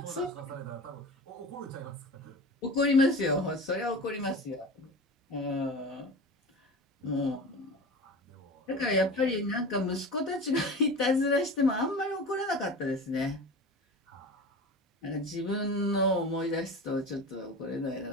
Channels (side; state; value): both; normal; correlation 0.32